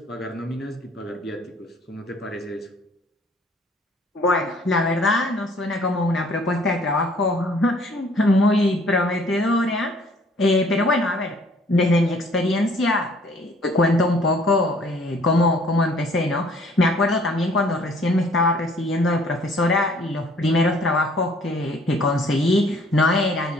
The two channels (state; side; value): normal; both; correlation 0.58